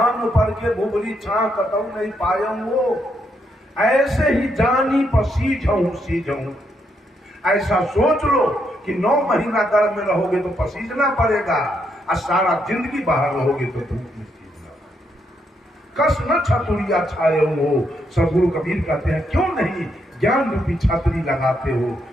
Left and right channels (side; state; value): both; normal; correlation 0.77